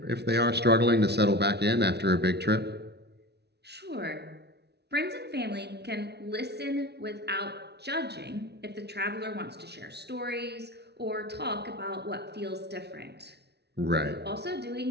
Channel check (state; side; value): late; left; 0.49 ms